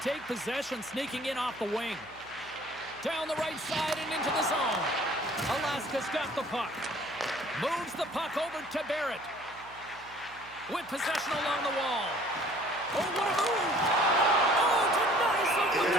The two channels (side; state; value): right; noise; hum, 23 dB below the sound